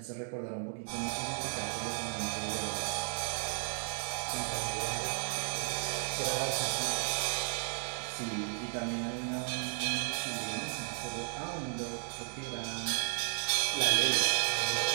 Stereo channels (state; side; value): silent; left; 55 dB below the other